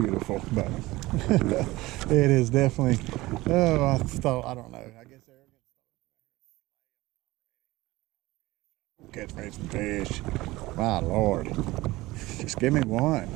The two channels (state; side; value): quieter; left; 19.3 dB